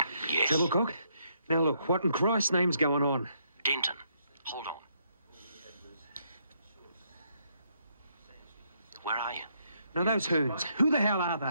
Yes. Doublecock? Now look, what in Christ's name's going on? Denton, hold on. Where are you? Now those hoons, who the hell are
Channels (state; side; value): inverted; both; correlation -0.74